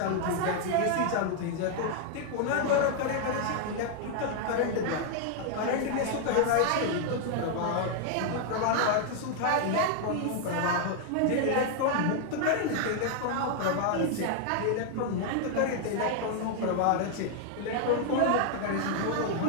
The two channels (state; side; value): different; both; correlation 0.00